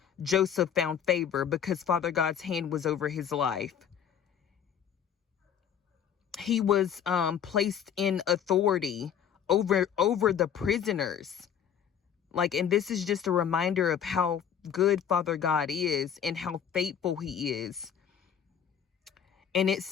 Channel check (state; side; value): quieter; right; 8.5 dB